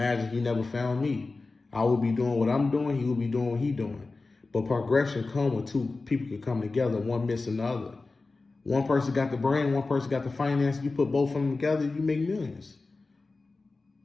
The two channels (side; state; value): right; quieter; 3.7 dB